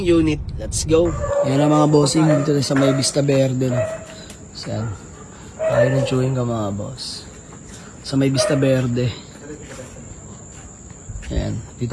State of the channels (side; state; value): both; identical; correlation 1.00